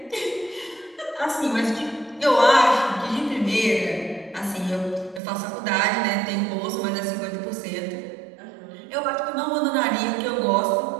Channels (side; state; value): left; drops out; at 5.2 s